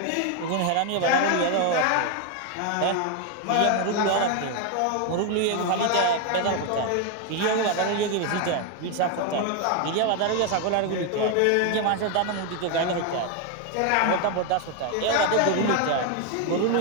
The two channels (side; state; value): both; different; correlation 0.01